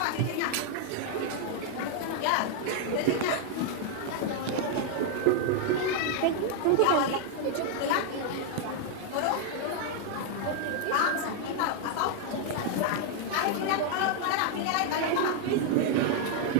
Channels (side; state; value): both; different; correlation 0.00